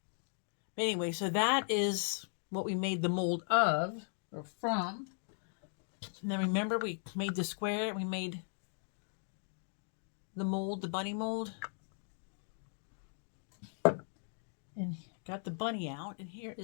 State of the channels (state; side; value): silent; right; 53 dB below the other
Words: Anyway, so that is what we made the mold of, or from. And then remember we made the square, we made the mold, the bunny mold. And got the bunny out, and here